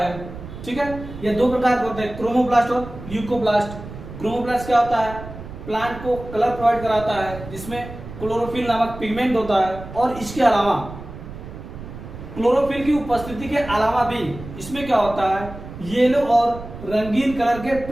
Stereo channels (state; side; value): noise; right; rumble, 12 dB below the sound